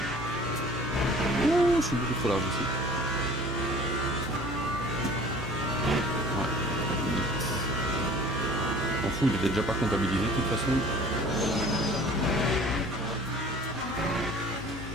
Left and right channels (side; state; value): both; normal; correlation 0.46